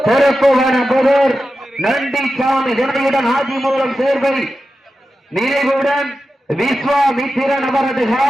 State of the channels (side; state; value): both; normal; correlation 0.92